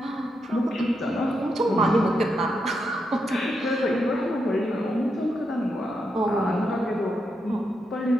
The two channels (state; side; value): normal; both; correlation 0.83